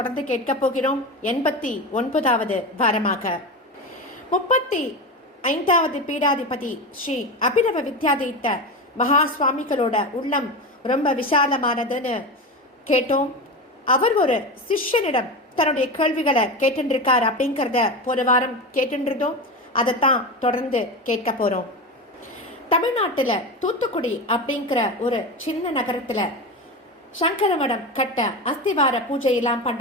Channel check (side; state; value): both; normal; correlation 0.22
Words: கேட்க போகிறோம். 89வது வாரமாக 35வது பீடாதிபதி ஸ்ரீ அபிநவ வித்யாதீத்த மகா சுவாமிகளோட உள்ளம் ரொம்ப விசாலமானதுன்னு கேட்டோம். அவர் ஒரு சிஷ்யனிடம் தன்னுடைய கேள்விகளை கேட்டுருக்கார் அப்படிங்கிறத போன வாரம் கேட்டுருந்தோம். அதைத்தான் தொடர்ந்து கேட்க போறோம். தமிழ்நாட்டுல தூத்துக்குடி அப்படிங்கிற ஒரு சின்ன நகரத்துல சங்கரமடம் கட்ட அஸ்திவார பூஜையெல்லாம்